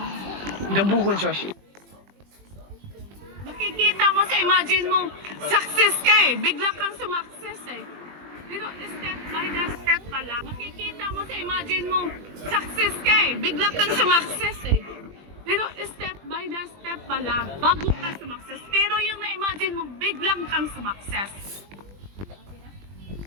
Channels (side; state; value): left; late; 20 ms